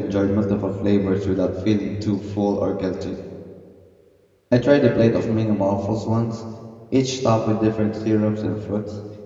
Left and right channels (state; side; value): identical; both; correlation 1.00